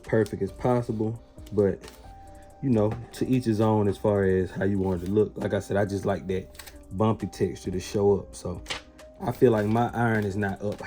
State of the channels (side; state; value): both; identical; correlation 1.00